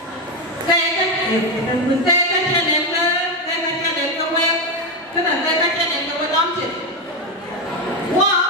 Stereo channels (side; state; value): both; normal; correlation 0.09